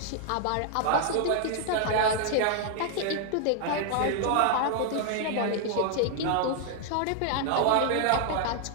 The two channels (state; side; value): different; both; correlation 0.00